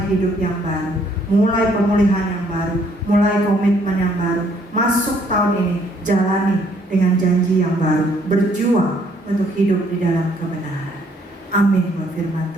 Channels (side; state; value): both; normal; correlation 0.66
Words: hidup yang baru, mulai pemulihan yang baru, mulai komitmen yang baru. Masuk tahun ini, jalani dengan janji yang baru, berjuang untuk hidup di dalam kebenaran. Amin buat firman